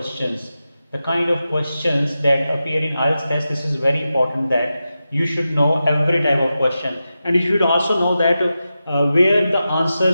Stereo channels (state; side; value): inverted; both; correlation -0.91